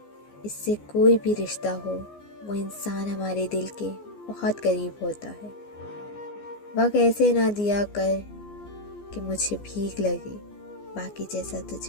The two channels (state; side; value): late; right; 14 ms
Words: اس سے کوئی بھی رشتہ ہو وہ انسان ہمارے دل کے بہت قریب ہوتا ہے۔ وقت ایسے نہ دیا کر کہ مجھے بھیک لگے، باقی جیسا